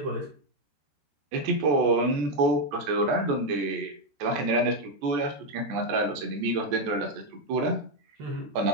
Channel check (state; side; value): late; left; 14 ms